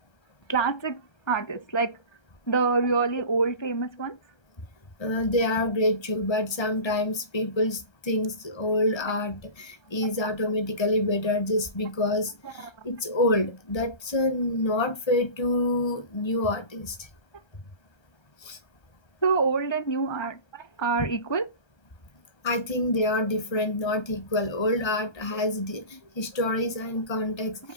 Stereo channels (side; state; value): right; late; 1.3 ms